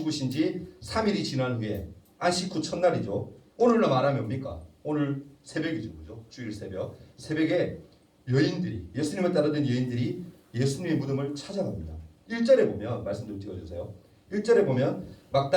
지 3일이 지난 후에 안식 후 첫날이죠. 오늘로 말하면 뭡니까? 오늘 새벽이죠. 그죠? 주일 새벽. 새벽에 여인들이, 예수님을 따르던 여인들이 예수님의 무덤을 찾아갑니다. 1절에 보면, 말씀 좀 찍어주세요. 1절에 보면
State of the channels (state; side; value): identical; both; correlation 1.00